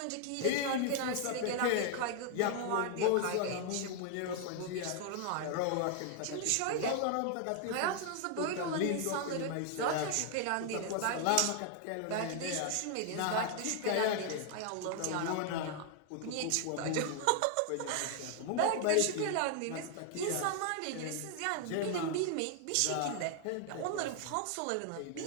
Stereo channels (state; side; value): different; both; correlation 0.00